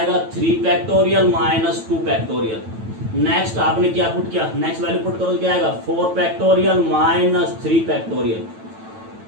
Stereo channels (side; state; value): left; late; 9.1 ms